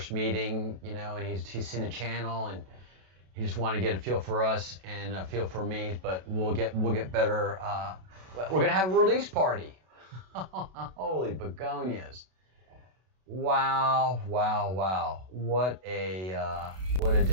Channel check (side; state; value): left; late; 32 ms